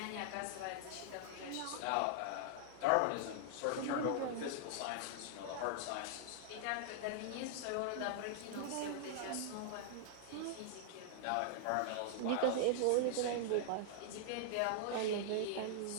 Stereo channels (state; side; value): different; both; correlation -0.01